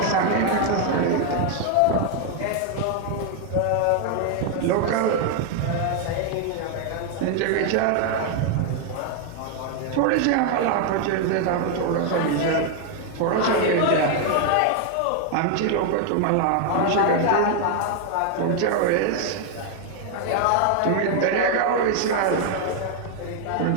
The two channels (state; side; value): different; both; correlation 0.00